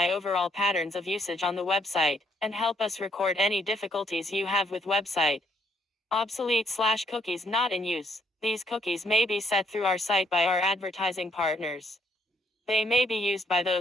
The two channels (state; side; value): normal; both; correlation 0.70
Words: overall patterns of usage on the website, and help us record any difficulties you have with website. Obsolete/cookies not in use. These cookies may be set through our site by our advertising partners. They may be used by